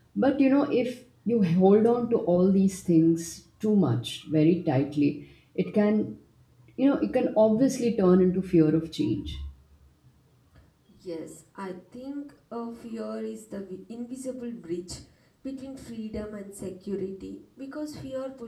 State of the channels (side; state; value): both; identical; correlation 1.00